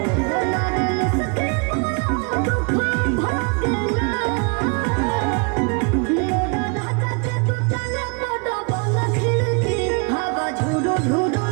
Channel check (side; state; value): left; quieter; 34.4 dB